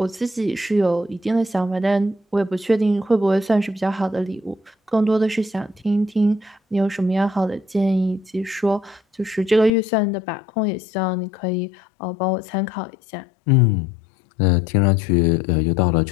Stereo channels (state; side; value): drops out; right; at 9.7 s